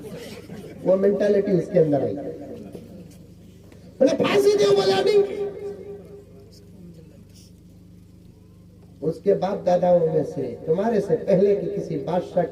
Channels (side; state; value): both; identical; correlation 1.00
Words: वो मेंटालिटी उसके अंदर आई। बोले फांसी दो, बोला नहीं। उस उसके बाप दादाओं में से तुम्हारे से पहले की किसी बादशाह